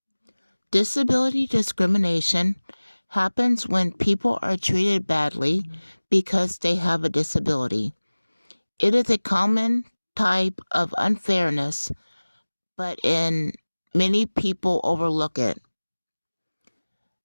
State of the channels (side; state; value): both; inverted; correlation -1.00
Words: Disability discrimination happens when people are treated badly because they have a disability. It is a common type of unfairness, but many people overlook it.